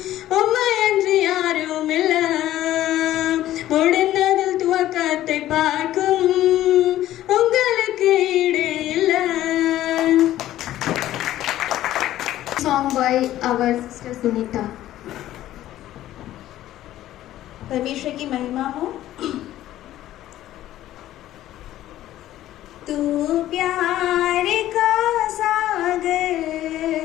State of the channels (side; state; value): right; quieter; 13.7 dB